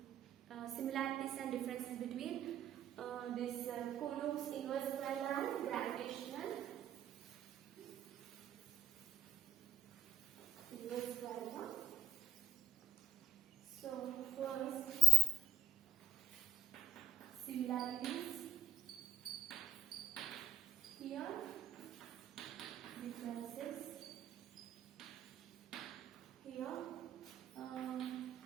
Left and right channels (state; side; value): quieter; left; 5.7 dB